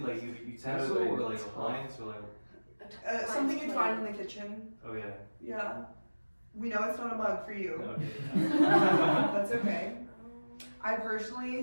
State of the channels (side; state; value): both; inverted; correlation -1.00